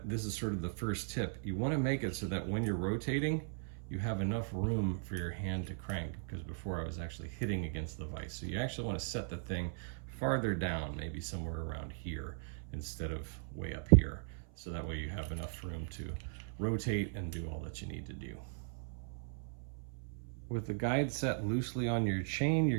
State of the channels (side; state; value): left; silent; 52 dB below the other